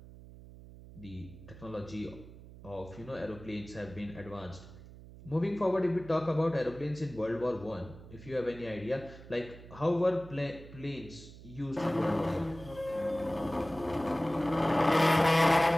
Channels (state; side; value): noise; right; hum, 17 dB below the sound